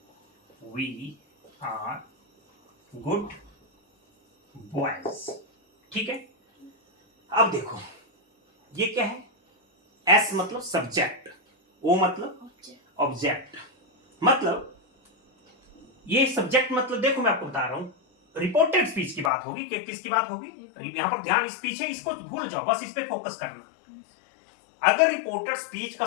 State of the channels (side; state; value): right; drops out; at 19.3 s